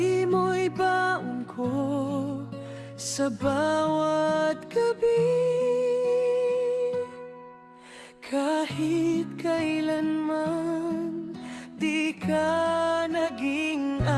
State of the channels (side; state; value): both; identical; correlation 1.00